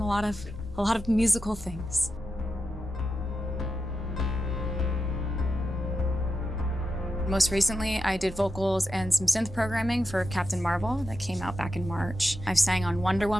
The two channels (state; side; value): normal; both; correlation 0.88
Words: lot of musical things. Most recently, I did vocals and some synth programming for Captain Marvel that came out back in March. I've sang on Wonder